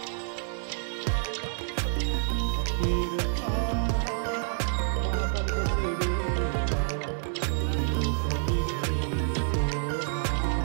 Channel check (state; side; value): silent; left; 59 dB below the other